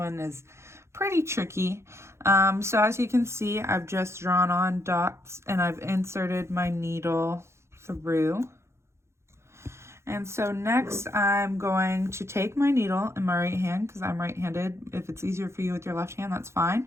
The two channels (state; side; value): late; left; 0.13 ms